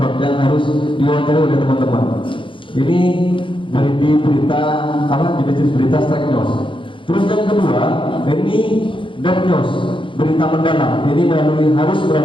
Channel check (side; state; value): right; late; 0.25 ms